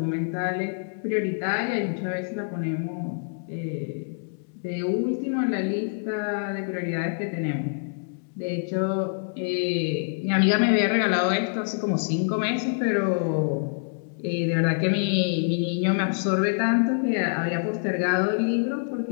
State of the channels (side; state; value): right; silent; digital silence